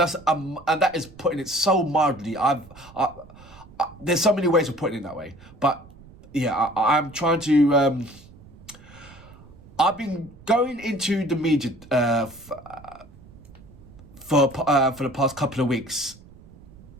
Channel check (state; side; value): noise; right; rumble, 22 dB below the sound